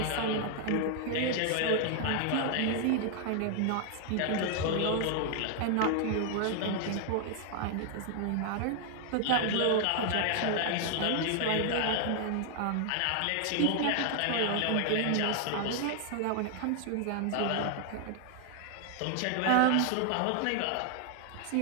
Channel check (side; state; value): both; different; correlation 0.00